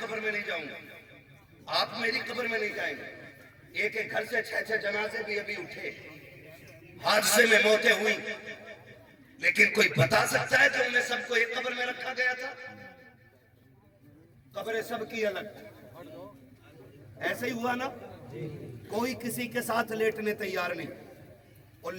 میں نہیں جاؤں گا، آپ میری قبر میں نہیں جائیں گے۔ ایک ایک گھر سے 6 جنازے بھی ابھی اٹھے، حادثے میں موتیں ہوئی، لیکن کوئی بتا سکتا ہے کہ انہیں سب کو ایک قبر میں رکھا گیا تھا؟ قبریں سب کی الگ، ایسے ہی ہوا نا، کوئی کسی کے ساتھ لیٹنے تیار نہیں اور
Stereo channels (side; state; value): both; identical; correlation 1.00